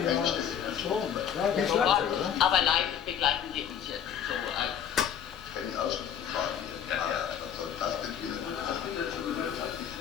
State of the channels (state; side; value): quieter; right; 8.8 dB